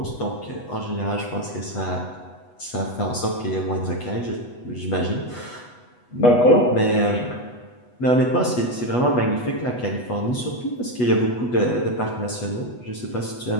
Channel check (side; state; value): right; late; 8.2 ms